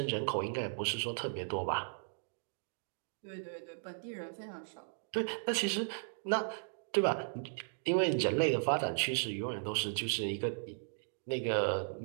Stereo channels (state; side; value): silent; left; digital silence